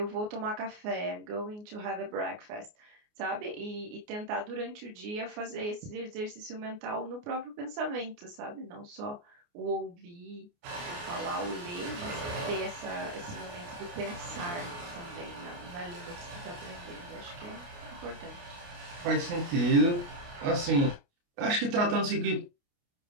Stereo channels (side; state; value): left; late; 29 ms